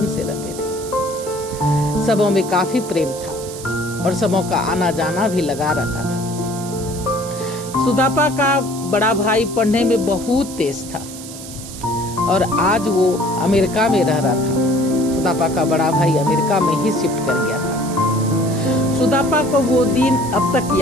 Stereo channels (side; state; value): right; noise; hiss, 13 dB below the sound